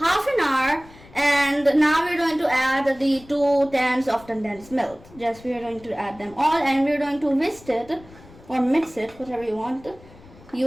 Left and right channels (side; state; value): left; noise; rumble, 22 dB below the sound